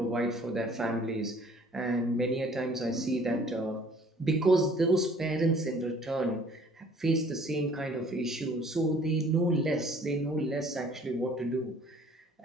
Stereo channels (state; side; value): normal; both; correlation 0.55